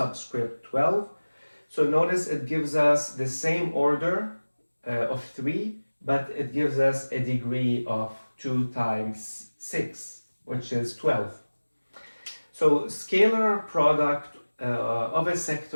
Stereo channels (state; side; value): inverted; both; correlation -1.00